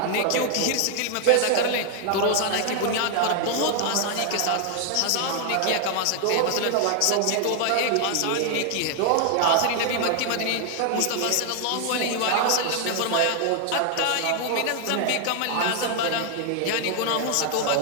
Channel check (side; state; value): both; different; correlation 0.00